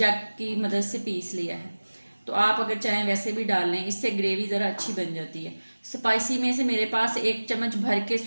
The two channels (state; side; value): inverted; both; correlation -1.00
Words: की मदद से पीस लिया है। तो आप अगर चाहें वैसे भी डाल लें, इससे ग्रेवी ज़रा अच्छी बन जाती है। स्पाइसी में से मेरे पास 1 चम्मच भर के